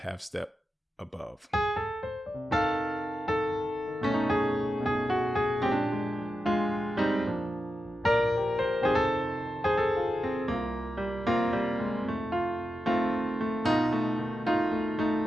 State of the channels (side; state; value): both; normal; correlation 0.90